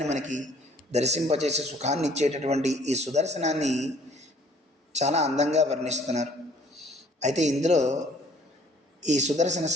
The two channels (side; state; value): both; normal; correlation 0.57